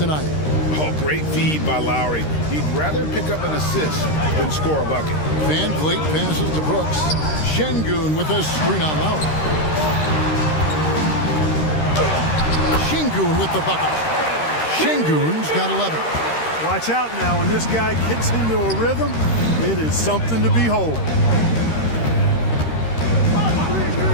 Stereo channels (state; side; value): late; right; 13 ms